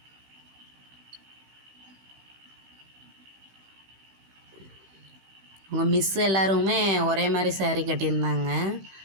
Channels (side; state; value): left; late; 15 ms